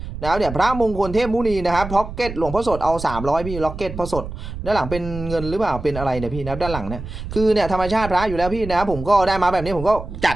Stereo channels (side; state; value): right; noise; rumble, 9 dB below the sound